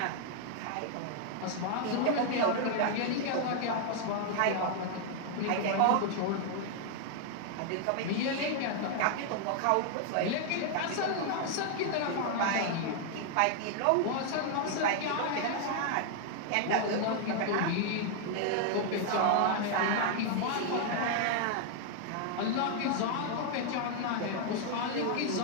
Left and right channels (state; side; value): different; both; correlation 0.00